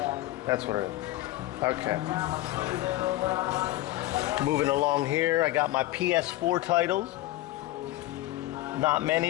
That's what it is. Okay. Moving along here, I got my PS4 titles. Not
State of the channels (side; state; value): right; quieter; 16.7 dB